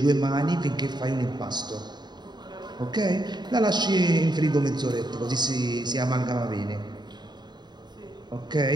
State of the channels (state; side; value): late; left; 0.21 ms